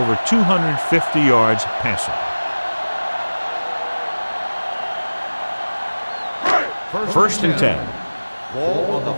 250 yards passing. First and 10. Ball on the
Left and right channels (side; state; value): both; inverted; correlation -1.00